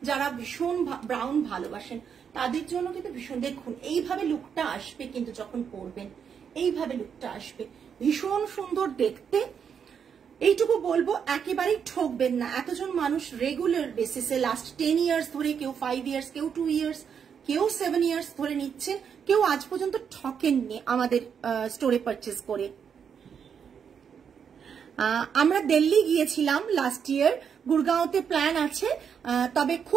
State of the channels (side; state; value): left; quieter; 7.3 dB